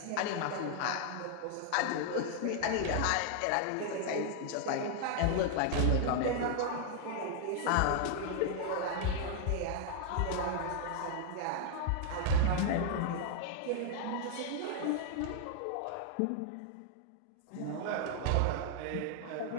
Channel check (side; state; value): both; different; correlation 0.00